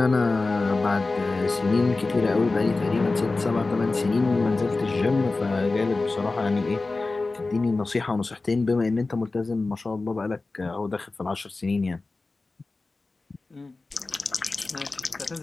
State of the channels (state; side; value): quieter; right; 3.5 dB